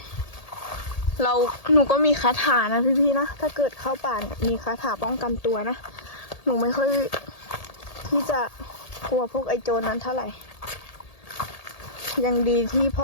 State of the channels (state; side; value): late; right; 1.8 ms